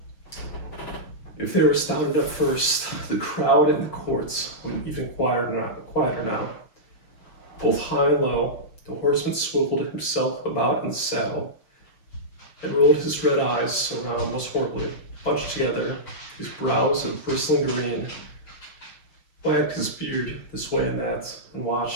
If they were astounded at first, the crowd in the courts wouldn't even quieter now. Both high and low, the horseman swiveled himself about in the saddle, and rolled his red eyes around most horribly, bunched together, his brows of bristling green, wagged his beard this way and that, and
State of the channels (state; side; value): late; right; 6.2 ms